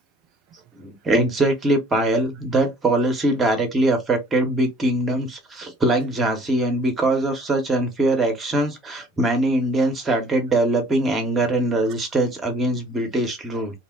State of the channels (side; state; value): both; normal; correlation 0.54